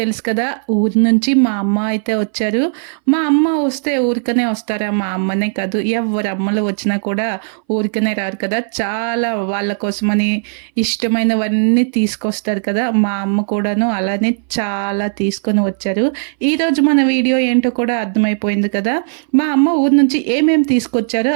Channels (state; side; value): silent; left; 62 dB below the other